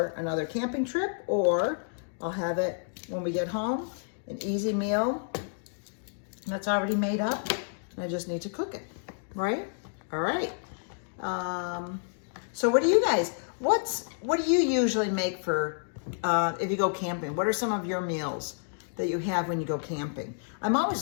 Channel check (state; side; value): silent; right; digital silence